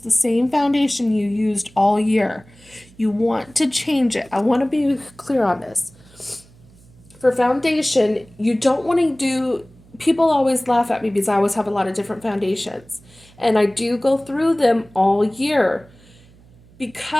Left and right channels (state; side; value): noise; right; hum, 26 dB below the sound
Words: same foundation you used all year. You want to change it. I want to be clear on this. For foundation, you don't want to do, people always laugh at me because I always have a lot of different foundations. And I do go through them all year